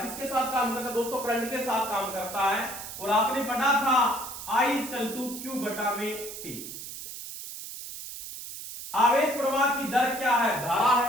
किसके साथ काम करता है दोस्तों? करंट के साथ काम करता है। और आपने पढ़ा था I इक्वल टू Q बटा में T। आवेश प्रवाह की दर क्या है? धारा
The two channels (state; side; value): noise; right; hiss, 10 dB below the sound